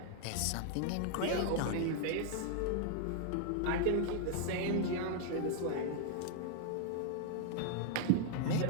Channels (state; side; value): different; both; correlation -0.01